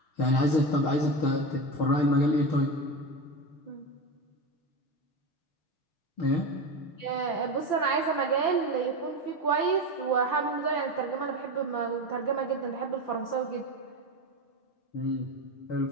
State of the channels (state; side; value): late; right; 5.9 ms